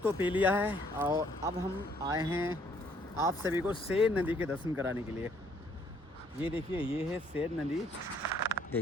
तो पी लिया है और अब हम आए हैं आप सभी को सेर नदी के दर्शन कराने के लिए। ये देखिए, ये है सेर नदी।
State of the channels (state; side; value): normal; both; correlation 0.64